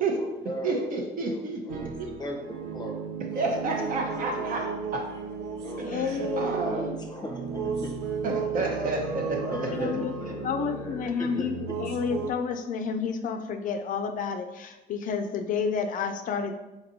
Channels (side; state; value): both; normal; correlation 0.33